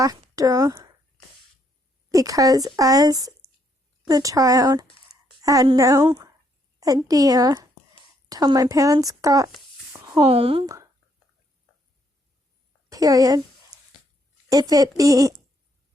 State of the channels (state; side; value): normal; both; correlation 0.72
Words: because as the child, I had no idea till my parents got home, period. If it be,